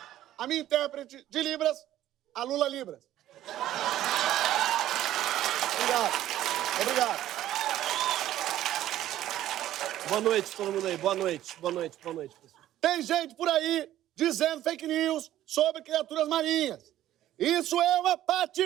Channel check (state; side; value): quieter; left; 13.2 dB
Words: a minha intérprete de Libras, a Lula Libras. Obrigado. Boa noite, todo mundo aí. Boa noite, pessoal. Tem gente por aí dizendo fake news sobre criaturas marinhas. Isso é uma